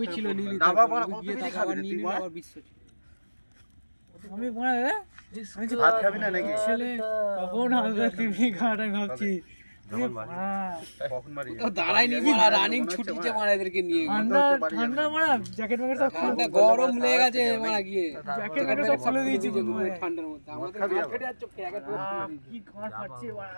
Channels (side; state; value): both; inverted; correlation -1.00